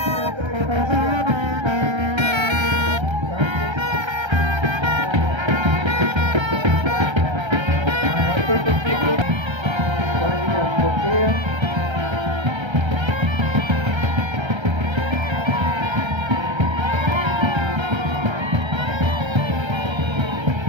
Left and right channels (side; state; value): left; late; 1.3 ms